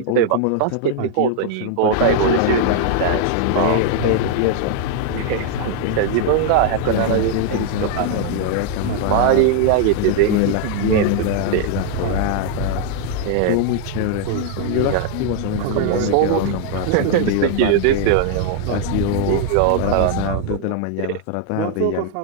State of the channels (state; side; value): different; both; correlation 0.00